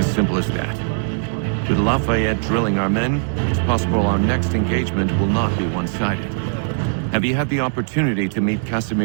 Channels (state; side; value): silent; left; digital silence